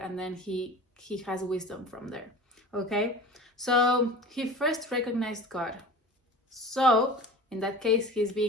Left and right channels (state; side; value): normal; both; correlation 0.37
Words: and then he has wisdom from there. Okay, so he first recognized God. So in that case, he's